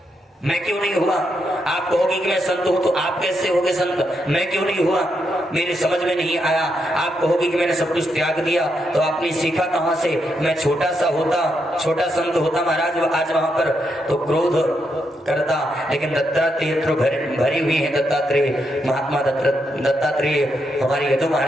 मैं क्यों नहीं हुआ? आप कहोगे कि मैं संत हूं, तो आप कैसे होगे संत? मैं क्यों नहीं हुआ? मेरे समझ में नहीं आया। आप कहोगे कि मैंने सब कुछ त्याग दिया, तो आपने सीखा कहां से? मैं छोटा सा होता, छोटा संत होता महाराज आज वहां पर तो क्रोध करता, लेकिन दत्तात्रेय तो भरी हुई है। दत्तात्रेय महात्मा दत्तात्रेय हमारे यदु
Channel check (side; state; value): both; normal; correlation 0.81